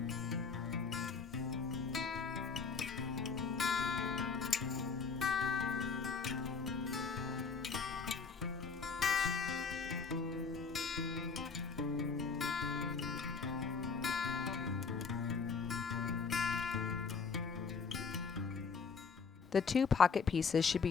The 2 pocket pieces should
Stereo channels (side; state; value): right; quieter; 5.2 dB